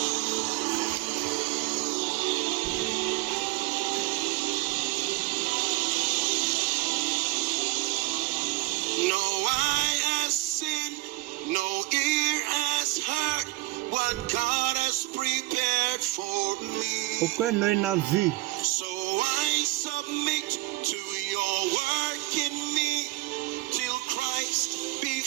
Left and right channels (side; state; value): left; quieter; 20.3 dB